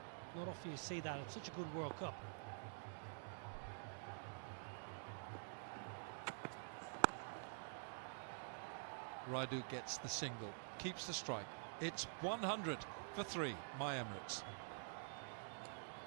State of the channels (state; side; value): silent; left; digital silence